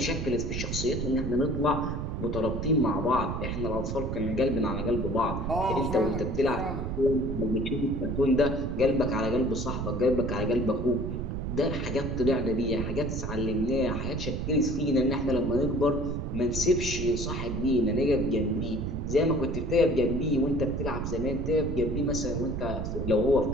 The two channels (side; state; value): right; noise; rumble, 3 dB below the sound